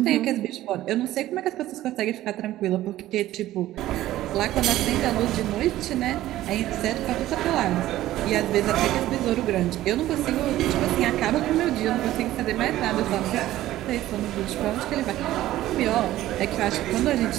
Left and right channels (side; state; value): left; quieter; 14.7 dB